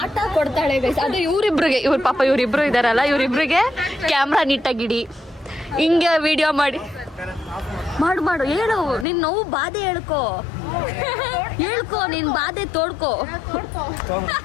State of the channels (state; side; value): drops out; right; at 9.1 s